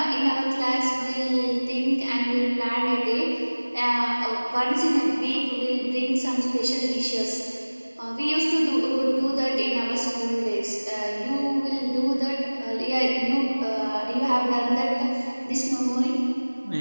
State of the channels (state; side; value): inverted; both; correlation -1.00